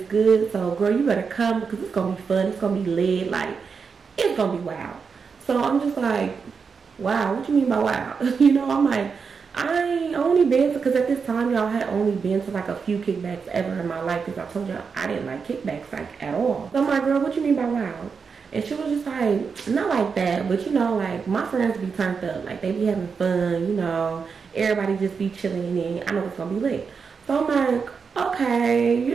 good, so girl, you better come because it's gonna be fun. It's gonna be lit. Like it's gonna be wild. So I'm just like, wow, what you mean by wow? You know, I'm like, I only been to, because at this time y'all had only been to like a few kickbacks ever in my life, because I told you I didn't like kickbacks like at all. So I'm like, girl, what you mean by wow? And she was just like, not like that, but you know, like my friends be turned up, like they be having fun, you know, everybody just be chilling, and I know it's gonna be lit. So I'm like, okay, you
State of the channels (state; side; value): quieter; left; 5.6 dB